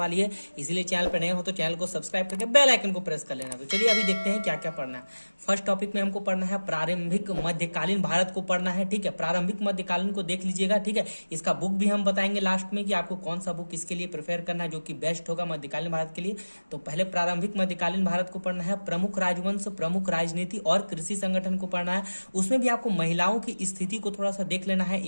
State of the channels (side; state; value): both; inverted; correlation -1.00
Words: है, इसलिए चैनल पर नए हो तो चैनल को सब्सक्राइब करके बेल आइकन को प्रेस कर लेना। तो चलिए अभी देखते हैं क्या क्या पढ़ना है। फर्स्ट टॉपिक में हमको पढ़ना है प्रारंभिक मध्यकालीन भारत को पढ़ना है। ठीक है, प्रारंभिक मध्यकालीन को देख लीजिएगा। ठीक है, इसका बुक भी हम बताएंगे लास्ट में कि आपको कौन सा बुक इसके लिए प्रेफर करना है जो कि बेस्ट होगा मध्यकालीन भारत के लिए। तो पहले प्रारंभिक मध्यकालीन भारत को पढ़ना है। प्रमुख राजवंश, प्रमुख राजनीति और कृषि संगठन को पढ़ना है। उसमें भी आपको महिलाओं की स्थिति को थोड़ा सा देख लेना है,